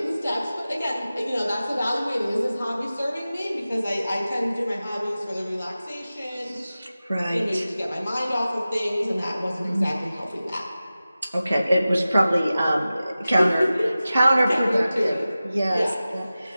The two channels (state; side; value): inverted; both; correlation -0.96